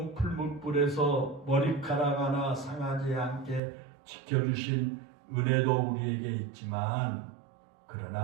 풀무불에서 머리카락 하나 상하지 않게 지켜주신 은혜도 우리에게 있지만,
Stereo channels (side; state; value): left; drops out; at 3.6 s